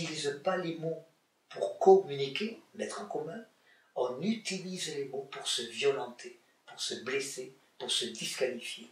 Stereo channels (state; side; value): identical; both; correlation 1.00